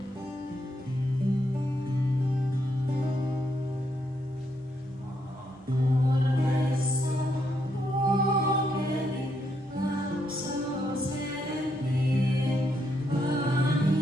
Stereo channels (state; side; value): normal; both; correlation 0.78